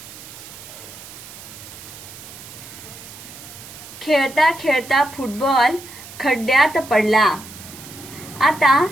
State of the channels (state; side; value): noise; right; hiss, 16 dB below the sound